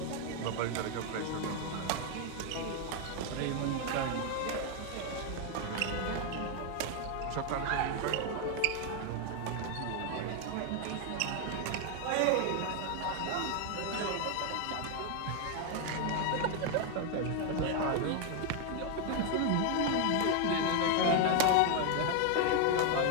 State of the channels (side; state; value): both; different; correlation 0.01